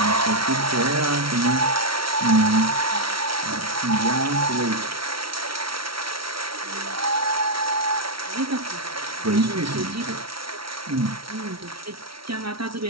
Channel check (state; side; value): late; left; 0.75 ms